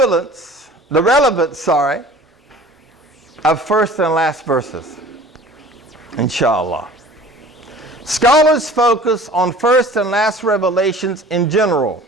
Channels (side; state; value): both; normal; correlation 0.45